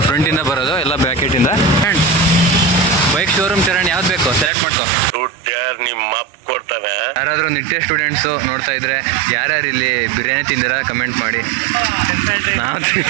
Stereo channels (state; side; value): drops out; left; at 4.5 s